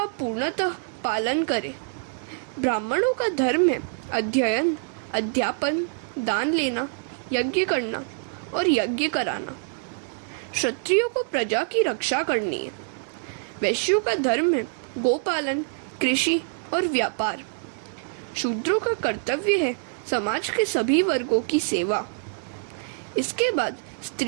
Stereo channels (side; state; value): left; silent; digital silence